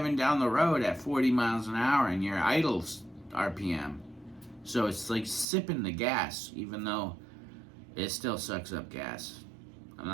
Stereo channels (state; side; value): drops out; left; at 5.5 s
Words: down the road at 40 miles an hour and you're idle RPM. So it's like sipping the gas, even though it still sucks up gas. I'm